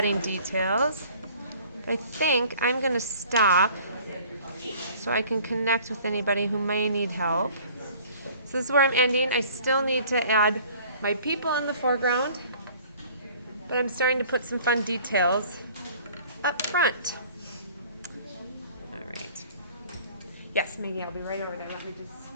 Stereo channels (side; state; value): both; inverted; correlation -0.51